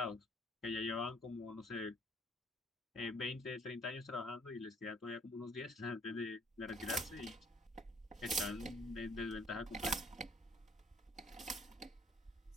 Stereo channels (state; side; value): normal; both; correlation 0.59